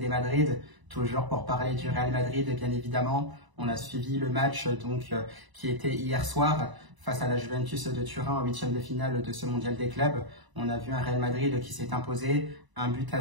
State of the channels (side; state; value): left; late; 1.0 ms